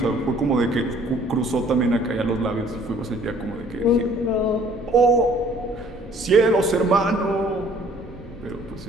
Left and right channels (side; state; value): both; normal; correlation 0.57